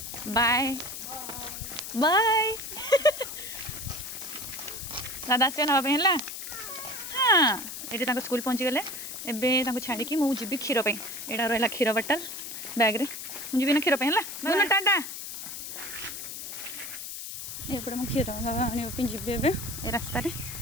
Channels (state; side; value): noise; left; hiss, 8 dB below the sound